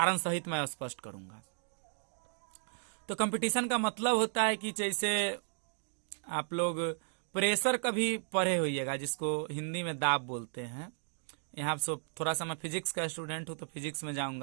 सहित मैं स्पष्ट करूंगा। तो कंपटीशन का मतलब होता है कि जैसे आप लोग प्रेशर कभी पढ़े होइएगा, जिसको हिंदी में दाब बोलते हैं। यहाँ से थोड़ा सा मैं फिजिक्स का स्टूडेंट हूँ तो फिजिक्स में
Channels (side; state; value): left; silent; digital silence